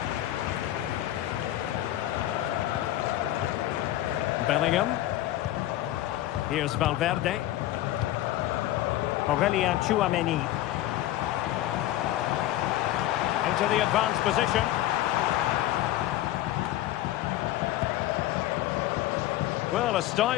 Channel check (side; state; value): right; quieter; 14.5 dB